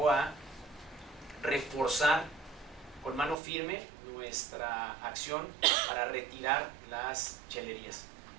a reforzar con mano firme nuestra acción para retirar las chelerías.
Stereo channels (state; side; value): drops out; left; at 3.4 s